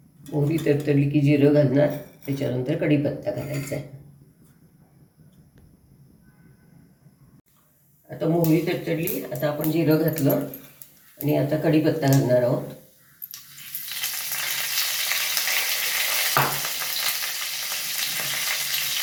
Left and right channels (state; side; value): identical; both; correlation 1.00